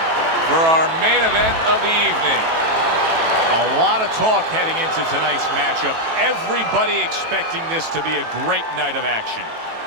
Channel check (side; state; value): left; late; 18 ms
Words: for our main event of the evening. A lot of talk heading into tonight's matchup. Everybody expecting this to be a great night of action.